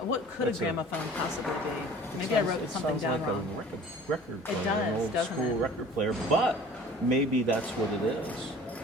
could That's a a- gramophone possibly be? Maybe I wrote It something sounds down like wrong. a record player, does, an old doesn't school it? record player, but maybe that's what it is.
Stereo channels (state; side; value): noise; left; hum, 29 dB below the sound